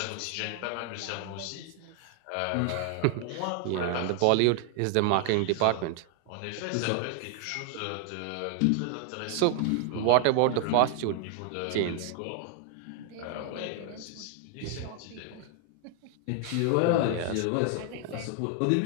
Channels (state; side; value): different; both; correlation 0.00